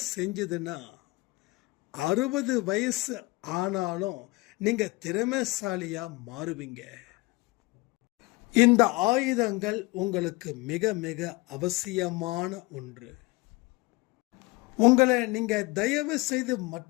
செஞ்சதுன்னா 60 வயசு ஆனாலும் நீங்கள் திறமைசாலியாக மாறுவீங்க. இந்த ஆயுதங்கள் உங்களுக்கு மிக மிக அவசியமான ஒன்று. உங்களை நீங்கள் தயவு செய்து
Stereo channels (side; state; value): right; quieter; 23.5 dB